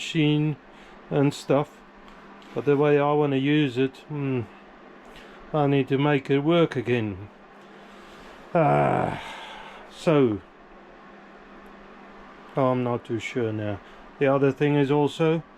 and stuff. But the way I want to use it, I need to make it work again. So I'm not too sure now. The other thing is also,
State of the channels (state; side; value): identical; both; correlation 1.00